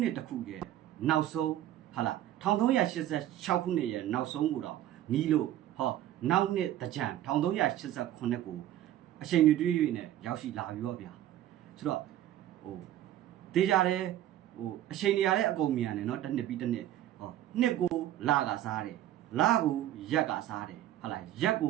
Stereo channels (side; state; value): left; quieter; 12.8 dB